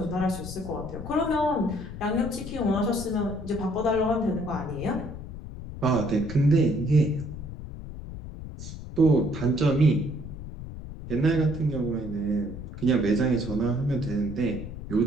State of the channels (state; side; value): noise; left; rumble, 10 dB below the sound